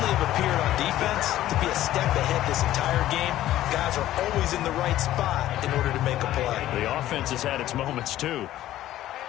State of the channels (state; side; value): quieter; right; 13.8 dB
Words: have appeared on defense to be a step ahead this entire game. Guys are always in the right spot in order to make a play. The offense has had its moments, too.